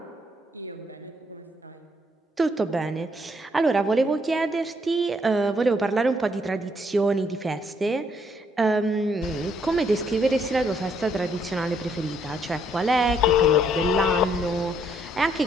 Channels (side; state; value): both; normal; correlation 0.71